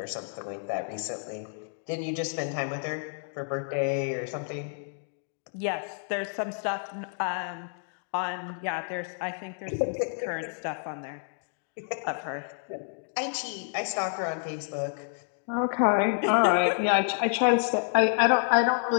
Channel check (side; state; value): right; silent; 58 dB below the other